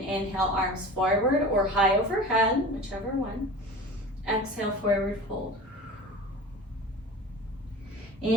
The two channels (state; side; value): normal; both; correlation 0.36